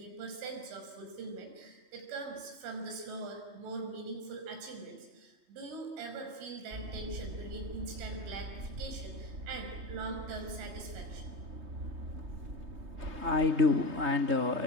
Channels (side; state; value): left; late; 3.2 ms